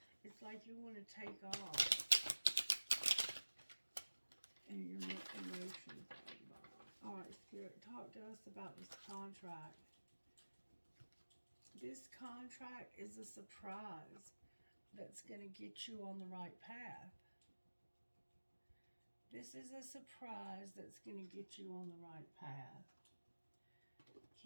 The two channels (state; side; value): inverted; both; correlation -1.00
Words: It's like you want to take off, and your emotions are involved. All right, Spirit, talk to us about this contract. This contract is a surprise that's going to get you on the right path. This is a surprise that's going to get you on the right path.